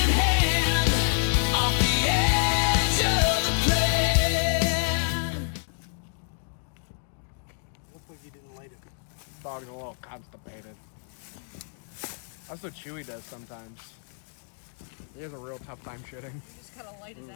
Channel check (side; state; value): right; silent; digital silence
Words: in hand, off the edge of the plan. Looks like you didn't light it. Dog's a little constipated. That's what Chewy does sometimes. He has a real tough time shitting. You just gotta light his